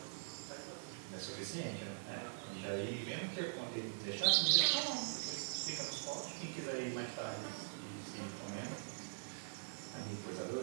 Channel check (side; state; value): left; silent; digital silence